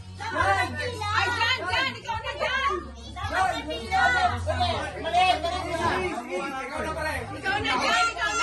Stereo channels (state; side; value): identical; both; correlation 1.00